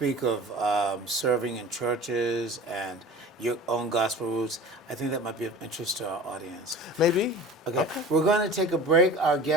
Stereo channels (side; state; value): both; normal; correlation 0.39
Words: of serving in churches and your own gospel roots. I think that might be of interest to our audience. Maybe. Okay. We're going to take a break. Our